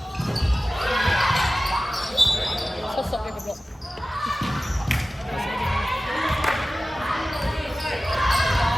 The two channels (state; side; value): normal; both; correlation 0.96